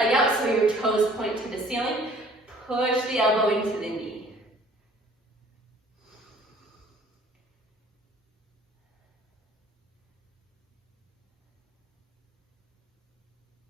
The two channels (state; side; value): normal; both; correlation 0.54